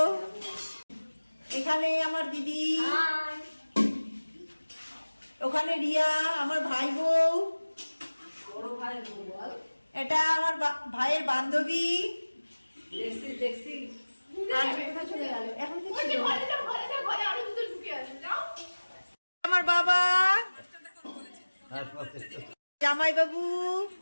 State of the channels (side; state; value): both; inverted; correlation -1.00